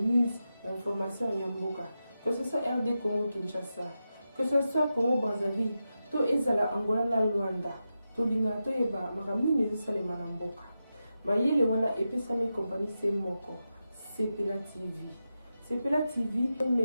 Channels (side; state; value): both; inverted; correlation -0.90